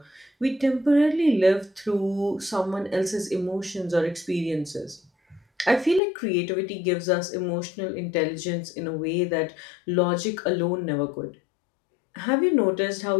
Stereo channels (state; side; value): drops out; right; at 6.0 s